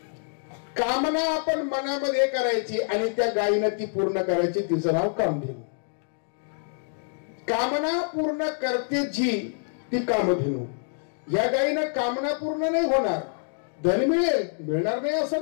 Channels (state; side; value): silent; right; digital silence